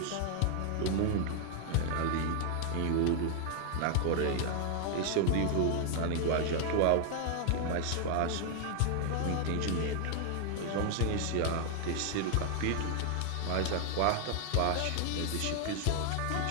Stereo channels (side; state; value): both; different; correlation 0.00